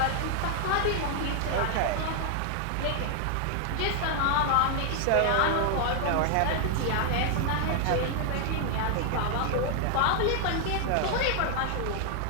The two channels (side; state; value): both; different; correlation 0.00